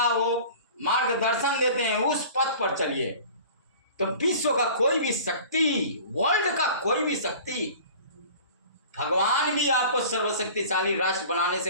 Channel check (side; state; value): both; inverted; correlation -0.43